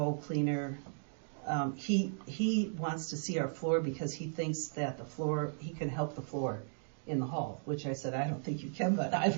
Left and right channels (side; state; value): left; silent; digital silence